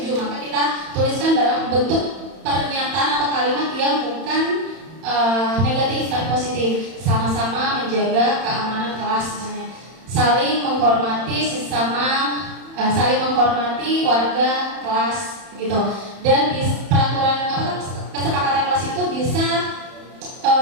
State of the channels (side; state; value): left; late; 31 ms